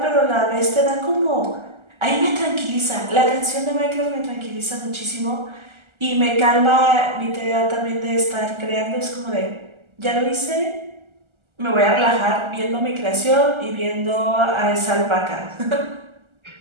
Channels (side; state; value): left; late; 1.4 ms